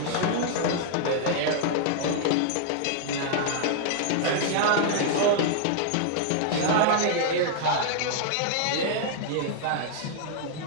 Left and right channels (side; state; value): both; different; correlation 0.00